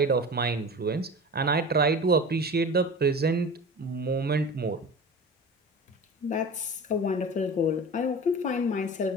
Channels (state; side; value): normal; both; correlation 0.34